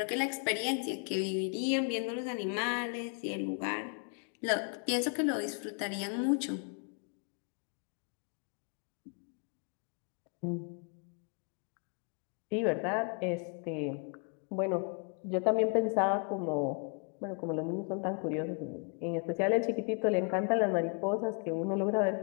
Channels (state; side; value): quieter; right; 39.2 dB